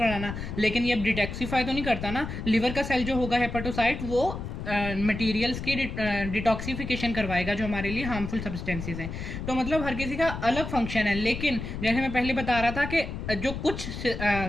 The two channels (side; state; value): left; noise; rumble, 7 dB below the sound